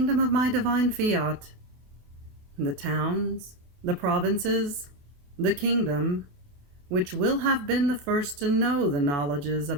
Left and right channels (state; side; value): late; left; 28 ms